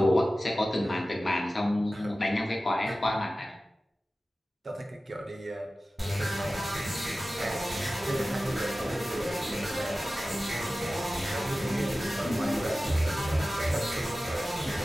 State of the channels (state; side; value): normal; both; correlation 0.96